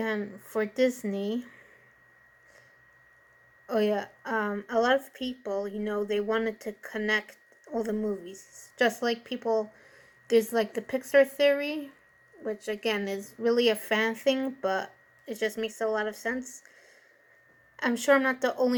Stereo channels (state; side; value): identical; both; correlation 1.00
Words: for Disney, a lot of people, they wanted to connect all the movies. Just like people, there's the Pixar theory, which again is really a fan thing, but it just makes a lot of sense. I'm sure I'm not the